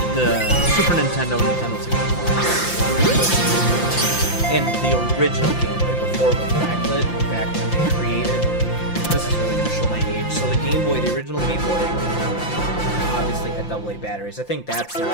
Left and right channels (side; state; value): right; late; 5.8 ms